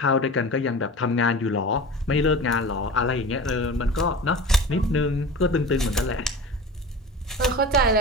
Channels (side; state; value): both; normal; correlation 0.34